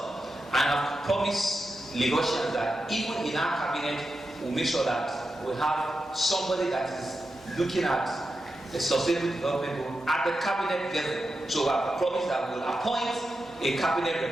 and I've promised Lagosians that even in our cabinet, we'll make sure that we have somebody that is looking at the sustainable development goal at the cabinet level. So I've promised that we'll appoint a cabinet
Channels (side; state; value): both; normal; correlation 0.89